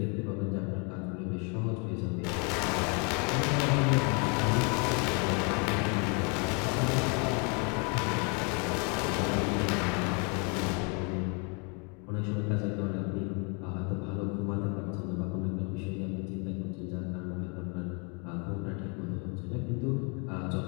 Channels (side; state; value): right; quieter; 34.5 dB